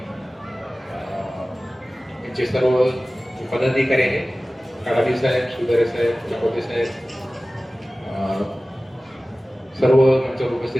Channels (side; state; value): both; normal; correlation 0.97